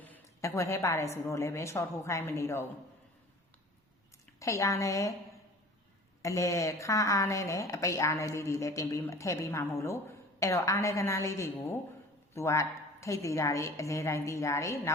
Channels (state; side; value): normal; both; correlation 0.43